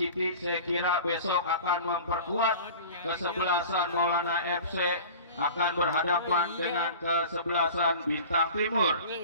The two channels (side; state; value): both; inverted; correlation -0.39